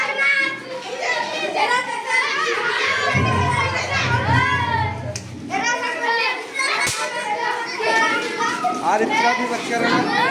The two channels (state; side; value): identical; both; correlation 1.00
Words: और इतना भी बर्च